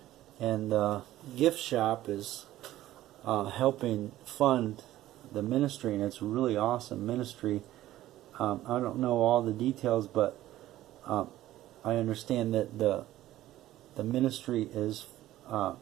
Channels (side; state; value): left; quieter; 14.6 dB